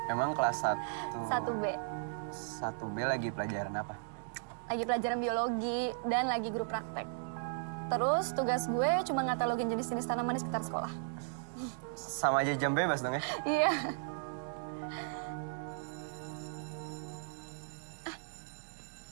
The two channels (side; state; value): left; silent; digital silence